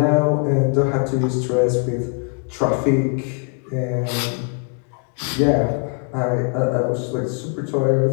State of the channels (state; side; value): quieter; right; 37.3 dB